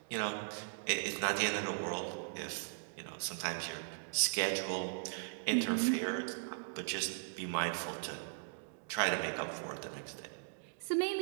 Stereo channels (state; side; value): silent; left; digital silence